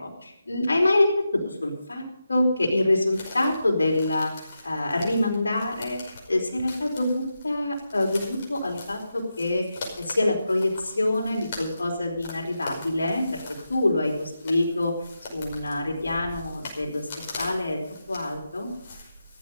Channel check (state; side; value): inverted; both; correlation -0.88